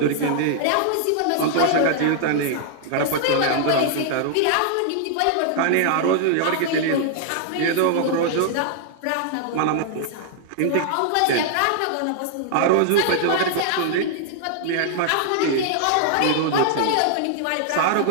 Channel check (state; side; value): different; both; correlation -0.01